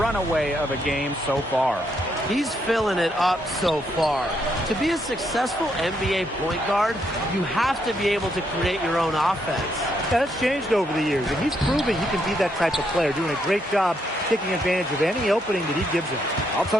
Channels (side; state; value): both; normal; correlation 0.76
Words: of a game so far. He's filling it up so far. To be a successful NBA point guard, you have to be able to create your own offense. That's changed over the years, and he's proving he can be that type of player, doing a great job taking advantage of any opening that he gives him. I'll